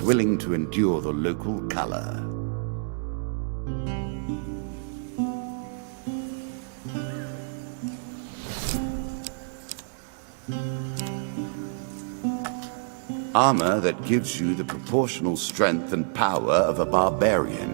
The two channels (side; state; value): left; silent; digital silence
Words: willing to endure the local color. Armor that gives you the proportional strength and power of a barbarian,